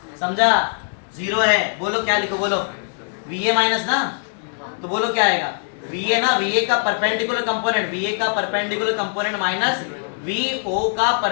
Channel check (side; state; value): right; silent; digital silence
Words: समझा? जीरो है। बोलो क्या लिखो, बोलो VA माइनस ना, तो बोलो क्या आएगा? VA ना, VA का परपेंडिकुलर कंपोनेंट, VA का परपेंडिकुलर कंपोनेंट माइनस VO का